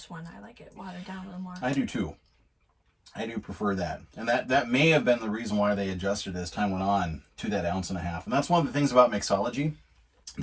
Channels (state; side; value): identical; both; correlation 1.00